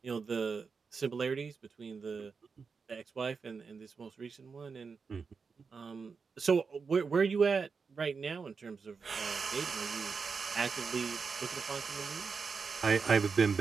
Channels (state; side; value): quieter; left; 5.2 dB